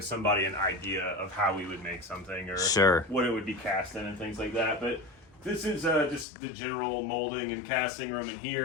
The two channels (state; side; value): drops out; right; at 6.2 s